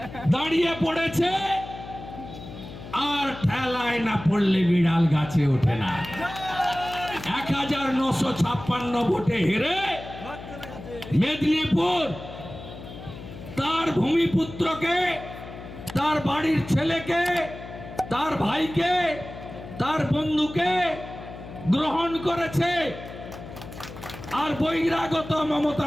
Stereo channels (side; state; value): left; noise; hum, 13 dB below the sound